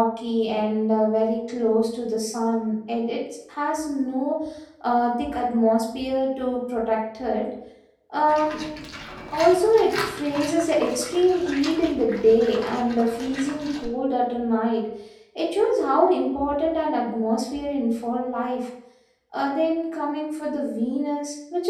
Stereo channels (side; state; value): both; identical; correlation 1.00